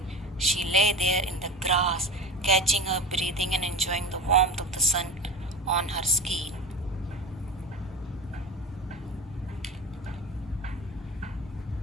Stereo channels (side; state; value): both; normal; correlation 0.31